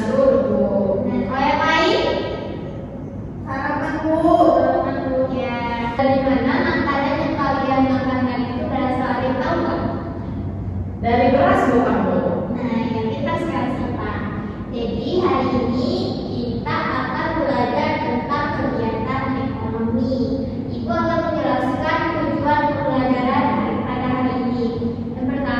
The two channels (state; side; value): identical; both; correlation 1.00